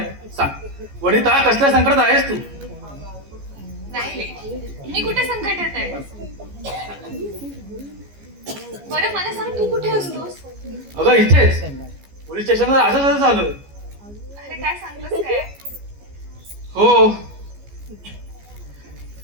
सांग वनिता, कसल्या संकटात आहेस तू? नाही रे, मी कुठे संकटात आहे? बरं मला सांग, तू कुठे असतोस? अगं इथेच पोलीस स्टेशनवर असंच झालं. अरे काय सांगतोस काय? हो,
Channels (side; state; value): left; late; 14 ms